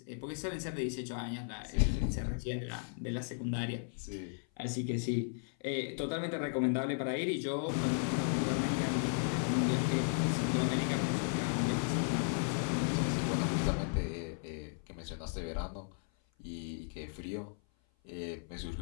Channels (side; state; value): right; silent; 54 dB below the other